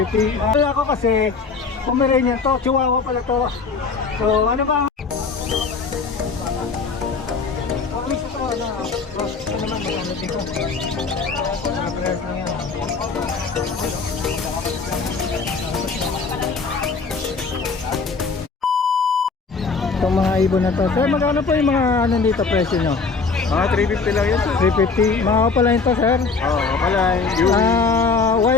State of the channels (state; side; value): quieter; right; 4.6 dB